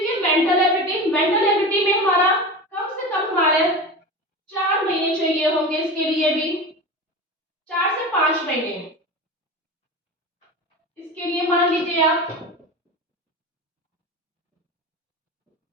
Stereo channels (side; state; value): both; normal; correlation 0.28